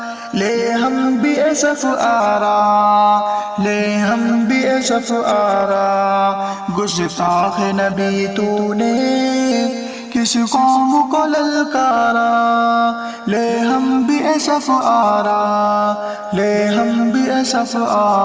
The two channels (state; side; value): identical; both; correlation 1.00